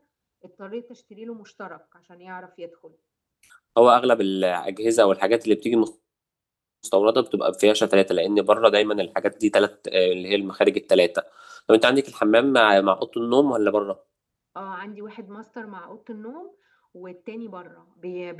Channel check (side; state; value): both; identical; correlation 1.00